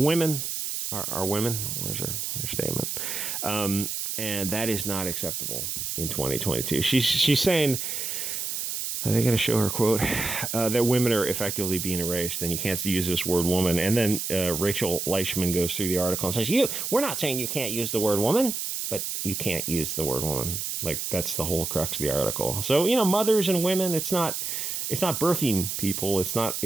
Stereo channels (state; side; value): noise; right; hiss, 3 dB below the sound